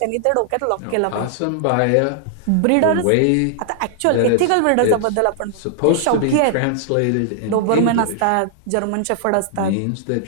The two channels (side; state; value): both; different; correlation -0.01